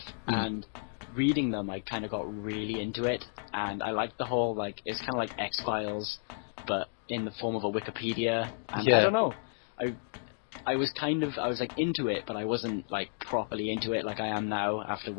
and reading them, I kind of got really into it, and I liked the whole, like, it's kind of like X-Files, but in the form of a Wikipedia, and I don't know, I was like into it, but I wasn't like properly into it like I am now after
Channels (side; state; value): right; silent; digital silence